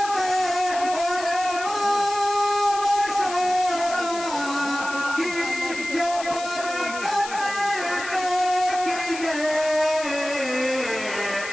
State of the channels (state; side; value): noise; left; hiss, 11 dB below the sound